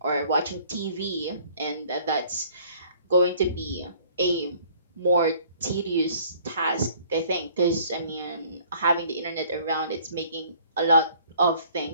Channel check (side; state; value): both; inverted; correlation -0.56